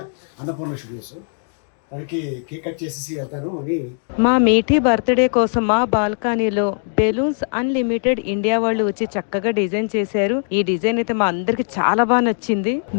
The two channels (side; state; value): right; silent; digital silence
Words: అన్నపూర్ణ స్టూడియోస్. దానికి కేక్ కట్ చేసేసి వెళ్తాను అని. మా మీఠీ బర్త్డే కోసం మా బాల్కనీలో బెలూన్స్ అన్లిమిటెడ్ ఇండియా వాళ్ళు వచ్చి చక్కగా డిజైన్ చేశారు. ఈ డిజైన్ అయితే మా అందరికి చాలా బాగా నచ్చింది.